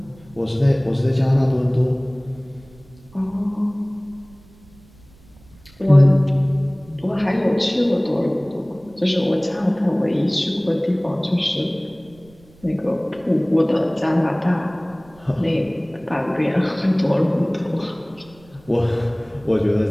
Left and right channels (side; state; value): right; noise; rumble, 26 dB below the sound